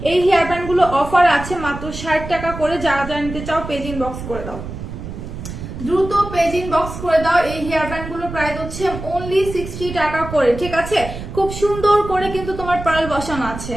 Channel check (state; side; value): noise; right; rumble, 9 dB below the sound